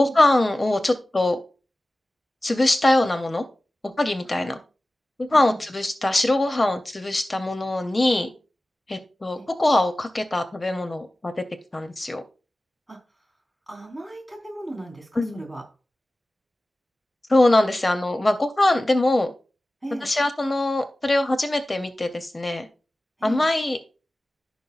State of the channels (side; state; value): both; normal; correlation 0.96